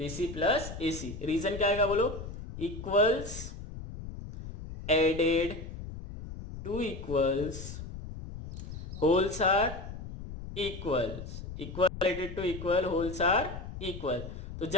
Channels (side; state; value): left; noise; rumble, 10 dB below the sound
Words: C plus A C. Reason क्या आएगा बोलो, equals added to equals, wholes are equals, equal added to equal, wholes are equal. तो